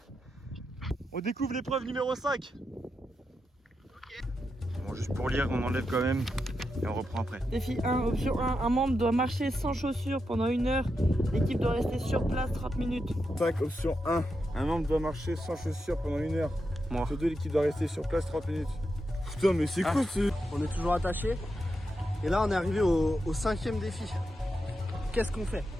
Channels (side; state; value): both; normal; correlation 0.86